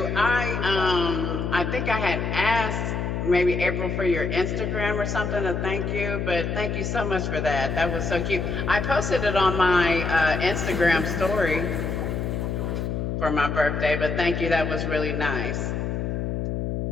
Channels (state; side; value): noise; left; hum, 2 dB below the sound